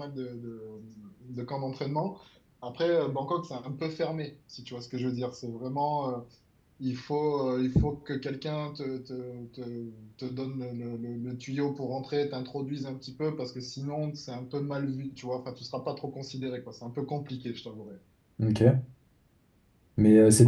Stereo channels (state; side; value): identical; both; correlation 1.00